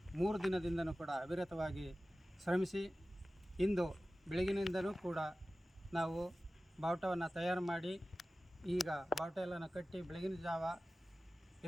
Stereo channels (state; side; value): normal; both; correlation 0.96